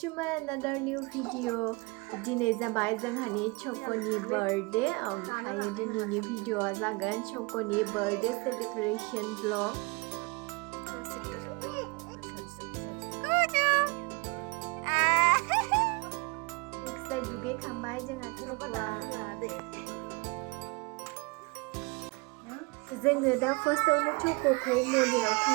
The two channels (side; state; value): left; quieter; 27.5 dB